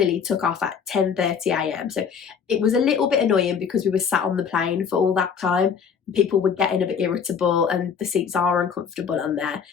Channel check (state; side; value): quieter; right; 6.7 dB